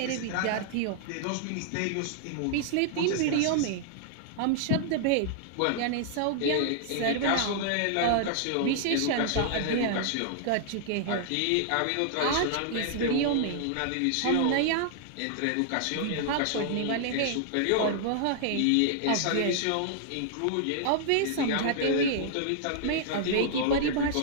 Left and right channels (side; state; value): both; different; correlation -0.01